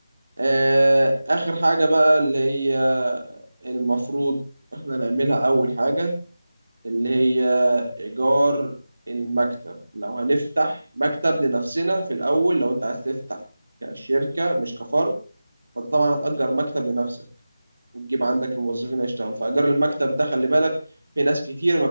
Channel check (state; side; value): inverted; both; correlation -0.97